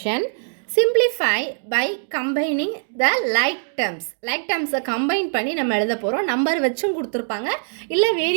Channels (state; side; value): silent; left; digital silence